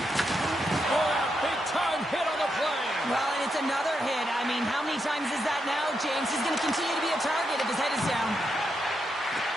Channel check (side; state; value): both; normal; correlation 0.83